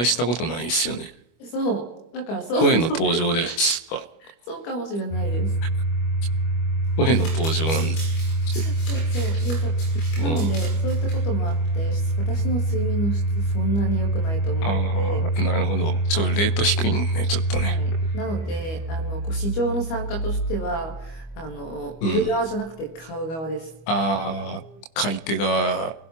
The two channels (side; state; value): right; late; 25 ms